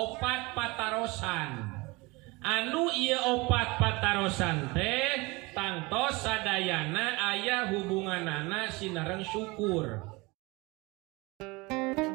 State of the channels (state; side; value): quieter; left; 24.4 dB